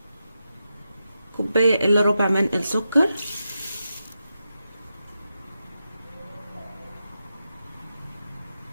كوباية الا ربع من السكر،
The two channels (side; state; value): both; inverted; correlation -0.88